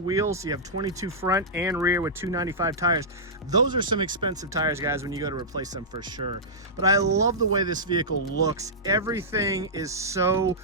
So you have 22 front and rear with 295 tires. Those are some expensive tires, guys, when you go to replace them for sure. But I love the way this vehicle looks. Every everything is so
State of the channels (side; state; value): both; normal; correlation -0.13